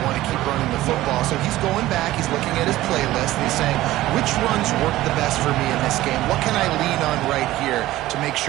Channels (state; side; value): quieter; left; 16.1 dB